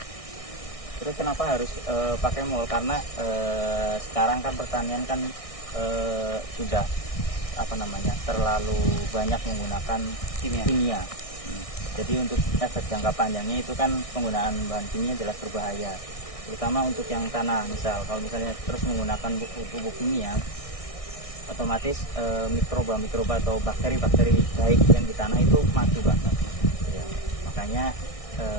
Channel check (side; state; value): right; late; 1.6 ms